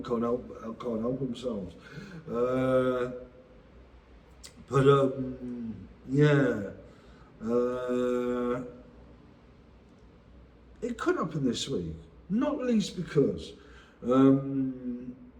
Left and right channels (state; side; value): identical; both; correlation 1.00